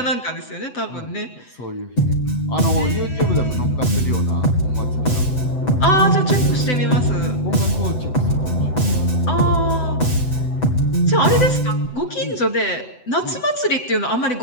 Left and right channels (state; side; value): late; right; 8.0 ms